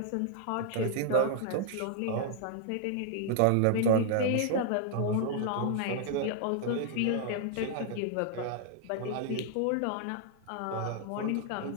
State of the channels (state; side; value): different; both; correlation 0.00